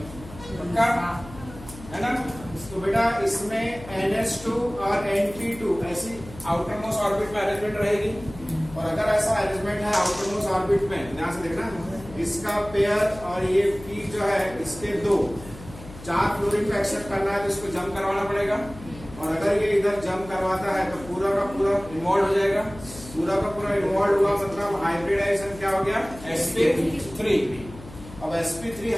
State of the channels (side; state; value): left; noise; hum, 16 dB below the sound